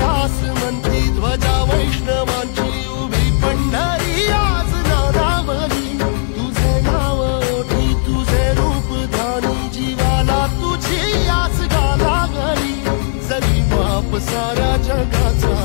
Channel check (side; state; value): right; silent; digital silence